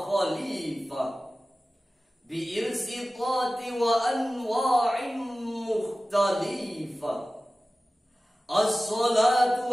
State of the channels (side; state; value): both; normal; correlation 0.96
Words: khalifah bi'irsitati wa anwa'in mukhtalifah.